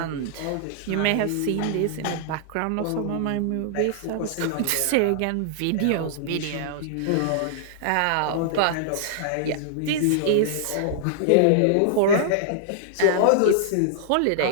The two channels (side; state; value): both; different; correlation -0.01